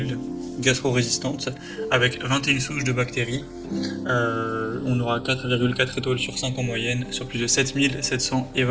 gastro-résistantes avec 21 souches de bactéries. On aura 4,4 étoiles sur 5 en moyenne sur plus de 7700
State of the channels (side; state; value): both; identical; correlation 1.00